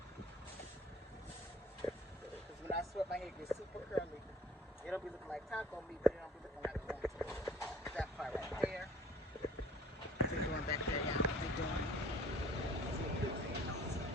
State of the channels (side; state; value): both; normal; correlation 0.51